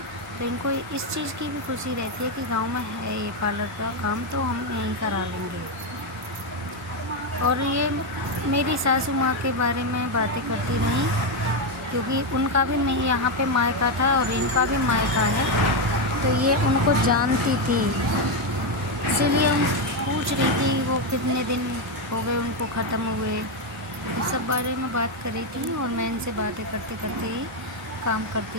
तो इनको इस चीज़ की भी खुशी रहती है कि गांव में है ये पार्लर का काम, तो हम यहीं करा लेंगे। और ये मेरी सासू माँ के बारे में बातें करती रहीं क्योंकि उनका भी नहीं यहाँ पे मायका था और इनका भी मायका है, तो ये उनको जानती थी, इसीलिए हम पूछ रही थी वो कितने दिन हो गए उनको ख़त्म हुए। इस सब बारे में बात कर रही थी और मैं इनसे बातें करते करते ही काम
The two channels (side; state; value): both; normal; correlation 0.05